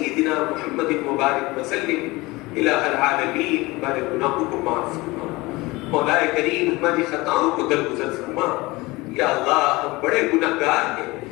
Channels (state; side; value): quieter; right; 22.0 dB